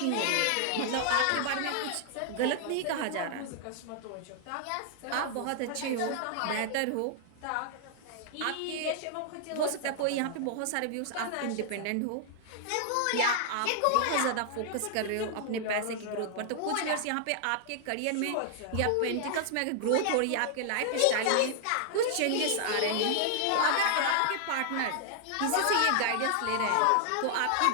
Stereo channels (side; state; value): both; different; correlation 0.00